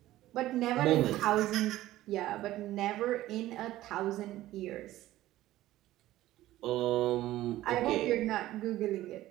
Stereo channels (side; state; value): left; quieter; 15.3 dB